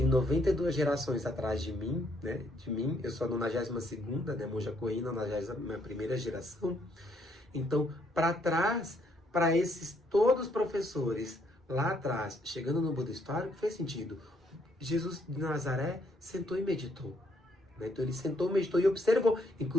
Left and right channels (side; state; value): both; normal; correlation 0.70